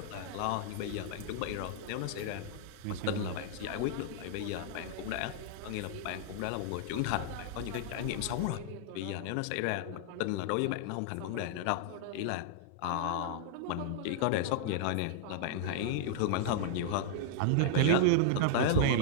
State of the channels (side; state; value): both; different; correlation -0.01